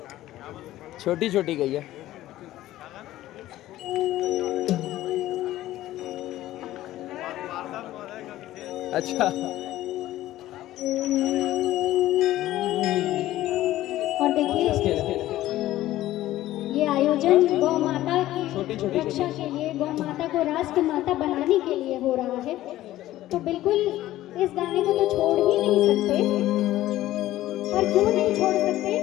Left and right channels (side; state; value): right; quieter; 14.9 dB